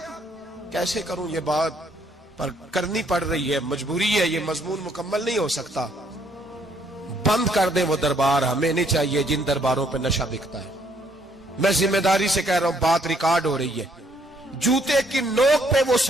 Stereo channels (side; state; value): both; normal; correlation 0.68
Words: کیسے کروں یہ بات، پر کرنی پڑ رہی ہے، مجبوری ہے، یہ مضمون مکمل نہیں ہو سکتا۔ بند کر دیں وہ دربار، ہمیں نہیں چاہیے جن درباروں پہ نشہ بکتا ہے۔ میں ذمہ داری سے کہہ رہا ہوں، بات ریکارڈ ہو رہی ہے۔ جوتے کی نوک پہ وہ